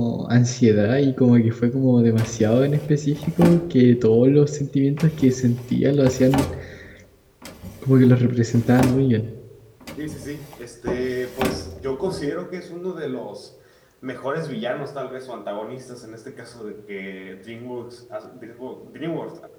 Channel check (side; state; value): both; identical; correlation 1.00